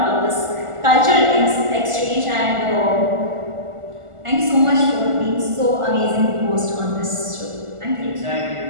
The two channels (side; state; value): left; late; 1.5 ms